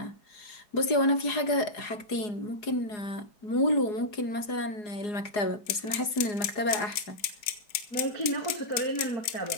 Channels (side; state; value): right; late; 4.8 ms